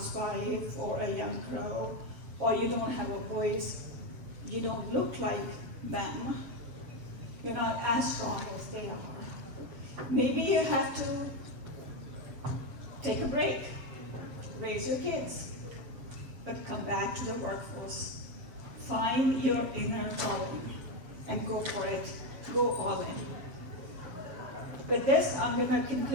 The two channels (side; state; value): left; late; 7.4 ms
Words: or a young girl or you don't have a voice, you don't look like them, you're not as strong as they are. Maybe you have to take a break, raise your kids, but come back to the workforce. Find your inner calling and go for it. Go all in. With this, I'm going to